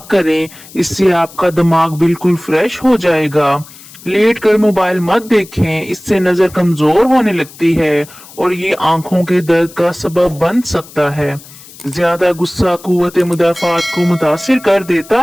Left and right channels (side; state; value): left; noise; hiss, 20 dB below the sound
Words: करें, इससे आपका दिमाग बिल्कुल फ्रेश हो जाएगा। लेट कर मोबाइल मत देखें, इससे नजर कमजोर होने लगती है और ये आंखों के दर्द का सबब बन सकता है। ज्यादा गुस्सा कुव्वत मुदाफात को मुतासिर कर